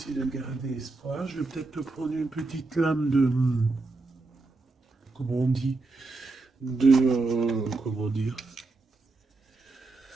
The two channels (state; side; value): quieter; left; 3.5 dB